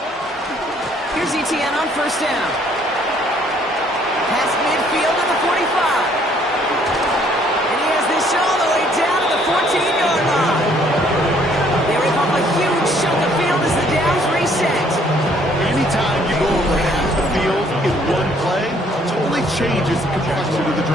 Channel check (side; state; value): both; normal; correlation 0.63